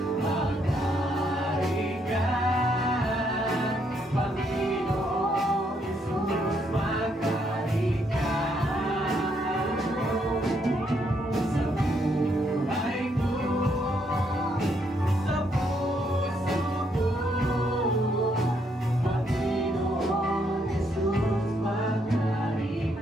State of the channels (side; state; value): both; normal; correlation 0.74